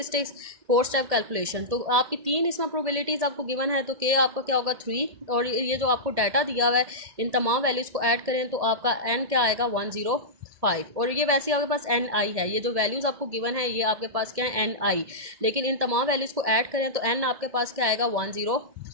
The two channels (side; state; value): left; late; 1.7 ms